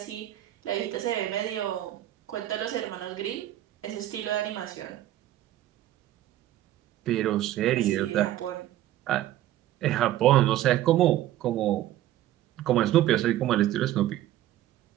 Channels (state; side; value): quieter; left; 13.6 dB